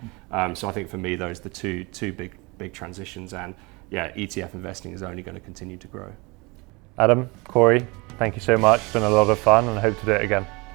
So I think for me, those are the two big transitions, and yeah, ETF investing is only going to continue to grow. Adam, Corey, thank you so much. It's been a lot of fun and I hope to do it again.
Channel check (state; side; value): quieter; left; 26.4 dB